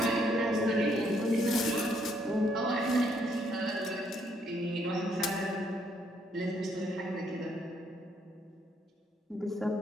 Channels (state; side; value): normal; both; correlation 0.71